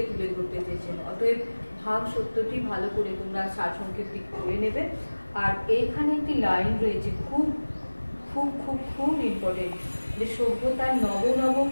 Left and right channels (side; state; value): both; inverted; correlation -1.00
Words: তুলে ধরতে চেয়েছেন। অতএব ভাব সত্যটি ভালো করে তোমরা সারসংক্ষেপটি করে নেবে। আর এইখানে একটি লাইন রয়েছে খুব খুব খুব খুব ইম্পর্টেন্ট, যে সভ্যতার নব নব